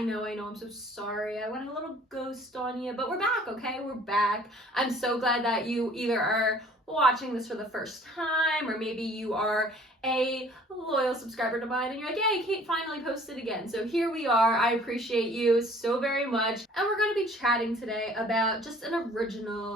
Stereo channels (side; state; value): both; normal; correlation 0.53